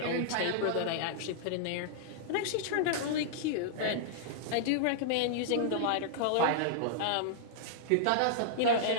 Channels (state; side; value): different; both; correlation -0.02